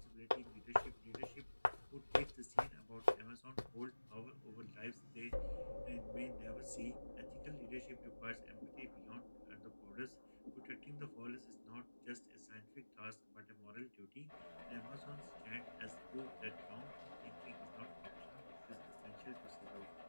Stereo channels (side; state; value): both; inverted; correlation -1.00